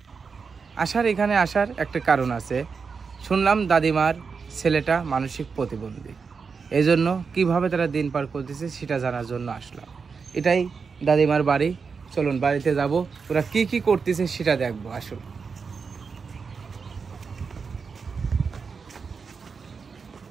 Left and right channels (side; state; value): left; quieter; 5.4 dB